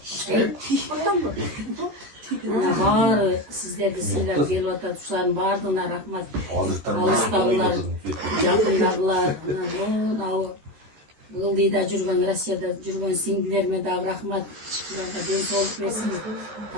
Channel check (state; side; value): late; left; 13 ms